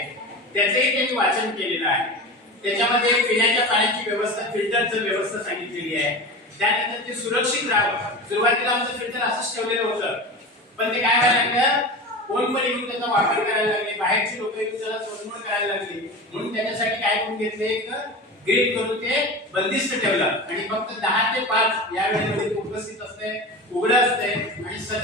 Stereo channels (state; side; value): normal; both; correlation 0.29